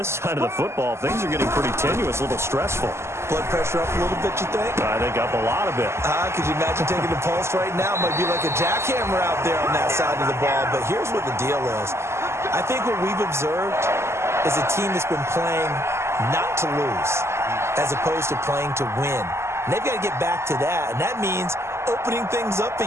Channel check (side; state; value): left; late; 0.13 ms